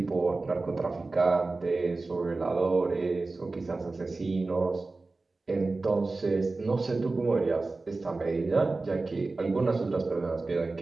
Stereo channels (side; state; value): left; quieter; 3.5 dB